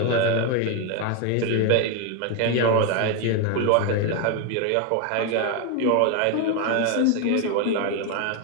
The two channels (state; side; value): different; both; correlation 0.01